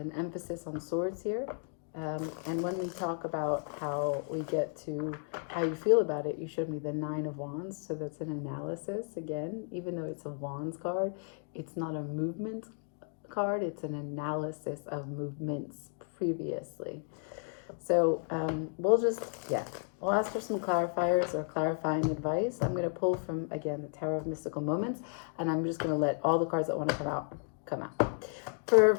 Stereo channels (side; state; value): right; silent; 55 dB below the other